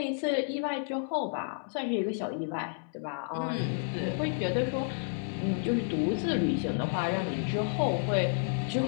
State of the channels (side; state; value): right; silent; digital silence